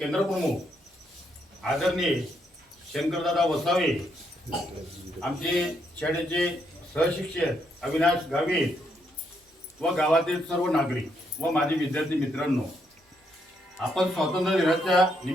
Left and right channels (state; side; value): normal; both; correlation 0.76